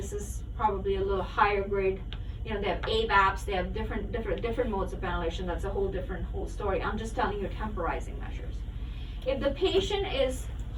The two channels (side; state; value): both; identical; correlation 1.00